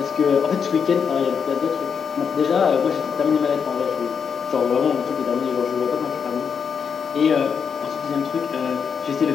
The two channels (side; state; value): right; quieter; 6.6 dB